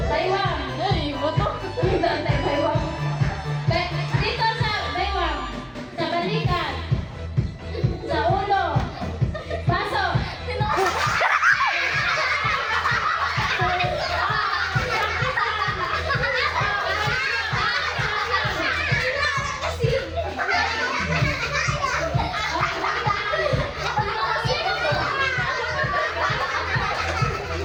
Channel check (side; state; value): both; identical; correlation 1.00